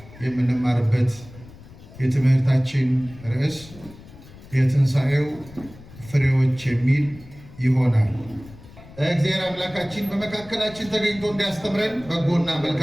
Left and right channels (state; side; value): noise; left; rumble, 19 dB below the sound